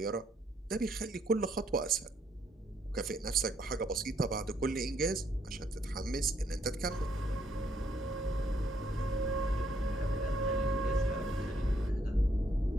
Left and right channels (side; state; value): both; normal; correlation 0.70